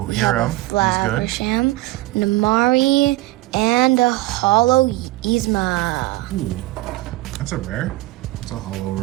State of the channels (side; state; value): left; quieter; 19.1 dB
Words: Hero, have a Flaversham, Namari, and a Hollow Yzma. Ooh, that's a rare. That's a hollow